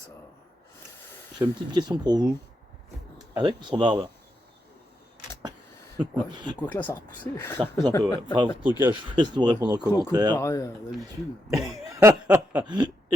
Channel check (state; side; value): normal; both; correlation 0.83